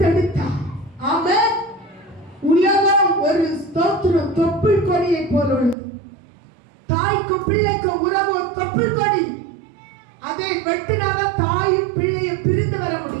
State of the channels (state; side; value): drops out; left; at 5.8 s